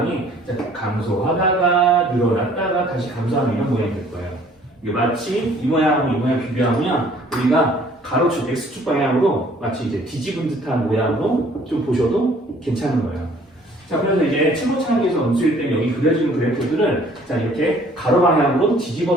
감소하다가 늘어났다가 다시 감소하는 이런 모양이 될 거예요. 이게 마치 이 모양하고 이 모양 비교하면 우리가 가로축 x축 방향으로 마치 이제 뒤집은 듯한 모양으로 좀 보셔도 괜찮은 거예요. 자, 그래서 이제 최고차항에서 음수일 때 여기 그려지는 그래프들을 자, 이렇게 가로 방향으로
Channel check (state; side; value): normal; both; correlation 0.57